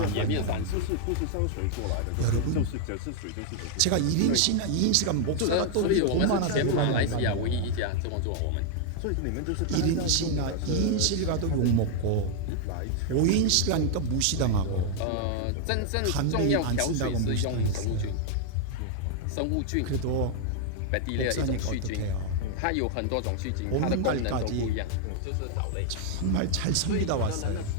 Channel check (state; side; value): different; both; correlation 0.00